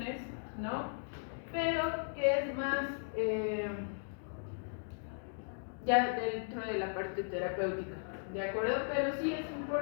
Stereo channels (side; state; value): right; silent; digital silence